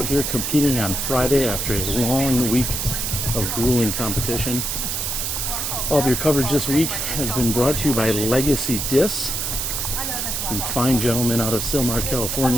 here competing on Friday after a long week of grueling competition. All of your coverage this week has been brought to you by Legacy Discs, the fine gentleman out of Silmar,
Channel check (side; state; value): right; noise; hiss, 2 dB below the sound